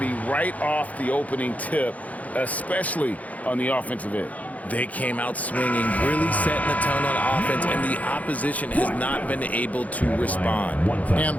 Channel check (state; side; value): late; right; 0.072 ms